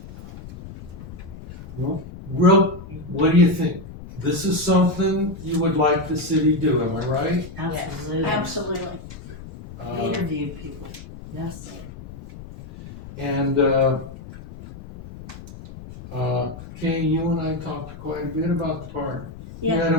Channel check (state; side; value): noise; left; rumble, 14 dB below the sound